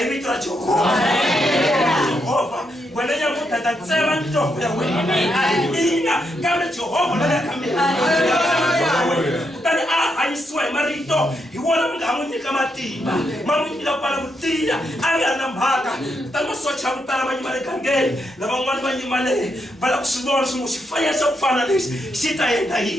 vito ra Jehovha wena nyamuta ta tsema ntombo ya wena a hi mina kambe Jehovha loyi a ka mina kutani a hanyisiwa hi marito hi wona mi nga n'wi nyika matimba ma n'wi nyika ku pfala ku tiya a nga na mhaka kutani masocha ya ku tala ma yima le gangeni lavan'wana va yimale va lava ku swi vona swin'we xifaniso xa ku fana lexi xi ta endla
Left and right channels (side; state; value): both; normal; correlation 0.80